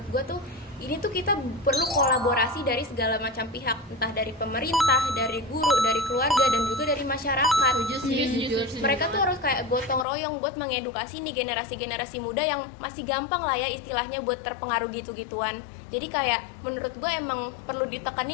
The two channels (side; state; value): right; drops out; at 10.1 s